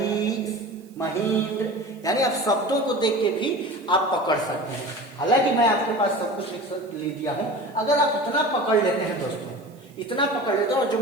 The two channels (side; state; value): right; noise; hiss, 30 dB below the sound